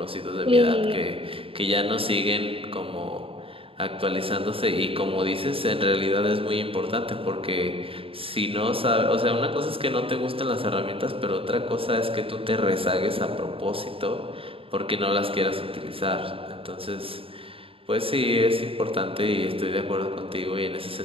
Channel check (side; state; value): left; late; 0.27 ms